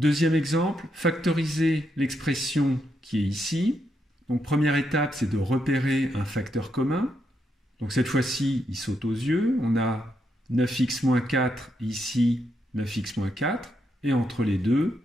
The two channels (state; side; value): normal; both; correlation 0.80